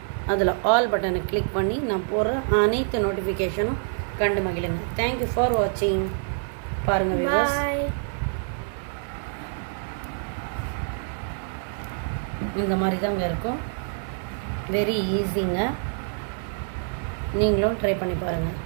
அதில் ஆல் பட்டனை கிளிக் பண்ணி நான் போடுற அனைத்து நோட்டிஃபிகேஷனும் கண்டு மகிழுங்க. தேங்க்யூ ஃபார் வாட்சிங். பாருங்கள் வியூவர்ஸ், இந்த மாதிரி தாங்க இருக்கும். வெரி ஈஸிங்க. நீங்களும் ட்ரை பண்ணி பாருங்கள்.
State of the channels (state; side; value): silent; left; 61 dB below the other